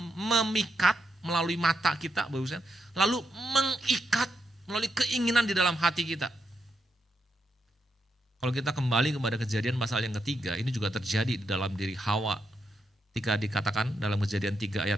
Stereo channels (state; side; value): normal; both; correlation 0.82